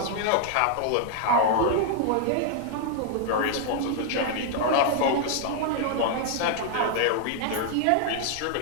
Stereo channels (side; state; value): both; different; correlation 0.00